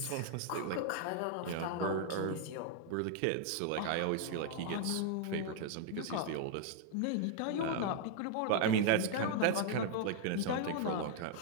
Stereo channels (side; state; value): both; different; correlation 0.00